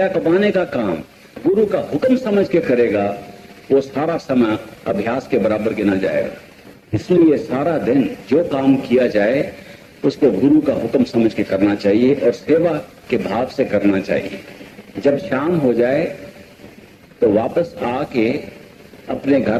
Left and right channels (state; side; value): identical; both; correlation 1.00